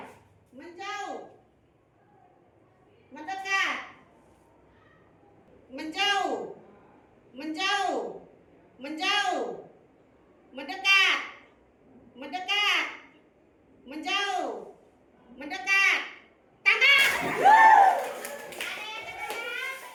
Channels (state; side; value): identical; both; correlation 1.00